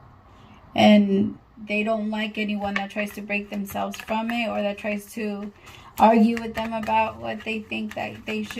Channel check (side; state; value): both; identical; correlation 1.00